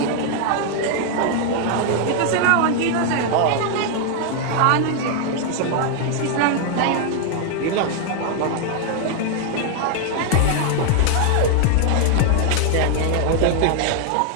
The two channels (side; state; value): both; different; correlation 0.00